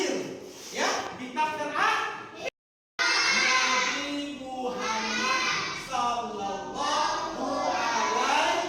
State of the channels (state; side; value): identical; both; correlation 1.00